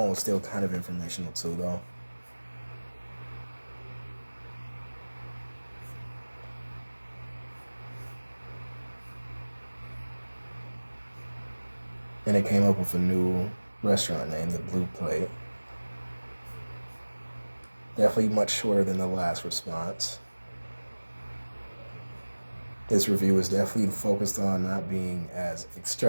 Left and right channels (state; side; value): inverted; both; correlation -1.00